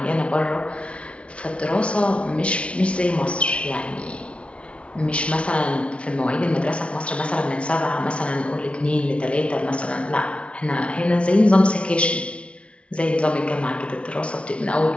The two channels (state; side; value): late; right; 0.060 ms